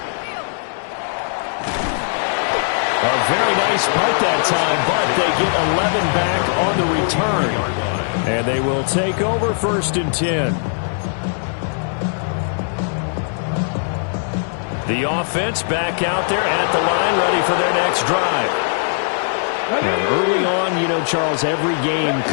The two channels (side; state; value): right; silent; 66 dB below the other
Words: nice punt that time, but they get 11 back on the return. And they will take over 1st and 10. The offense back out there at the line, ready for their next drive. Now, early on, you know, Charles, every game